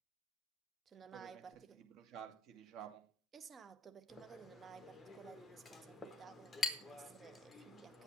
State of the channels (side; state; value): both; normal; correlation 0.63